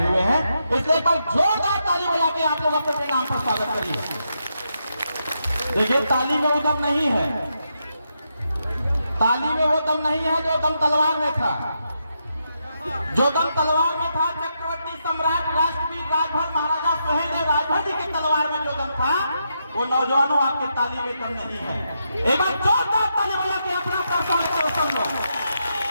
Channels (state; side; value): inverted; both; correlation -0.82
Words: हुए हैं। इसलिए एक बार जोरदार ताली बजा के आप लोग अपने नाम पर स्वागत करिए। देखिए, ताली में वो दम नहीं है, ताली में वो दम नहीं है जो दम तलवार में था। जो दम तलवार में था, चक्रवर्ती सम्राट राष्ट्रवीर राजभर महाराजा सुहेलदेव राजभर जी की तलवार में जो दम था, वो नौजवानों आपके ताली में दम नहीं है। एक बार जोरदार ताली बजा के अपना